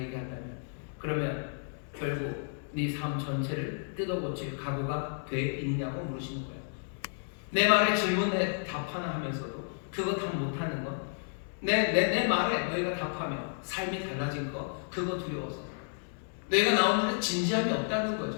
그러면 결국 네 삶 전체를 뜯어고칠 각오가 돼 있냐고 물으시는 거예요. 내 말에 질문에 답 하나 하면서도 그거 다 못하는 거, 내 말에 너희가 답하면 삶이 달라진 거, 그거 두려워서 너희가 나오는데 진지함이 없다는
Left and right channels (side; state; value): right; silent; digital silence